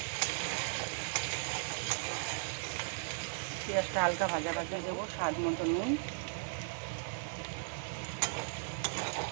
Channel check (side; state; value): left; silent; digital silence